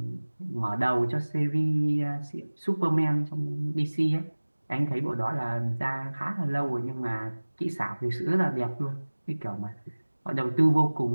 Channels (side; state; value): both; inverted; correlation -1.00